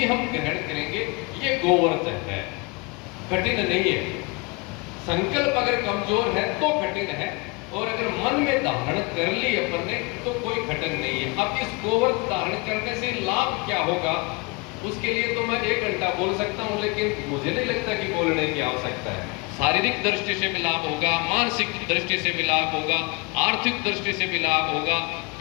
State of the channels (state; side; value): quieter; right; 28.2 dB